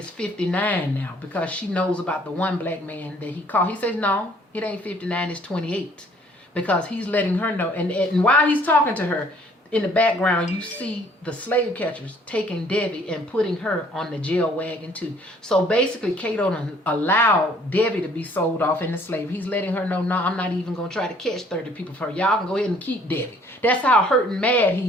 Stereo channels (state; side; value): normal; both; correlation 0.59